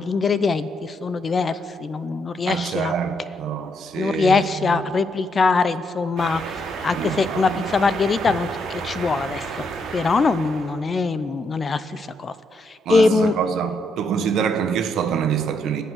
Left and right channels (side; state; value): both; normal; correlation 0.77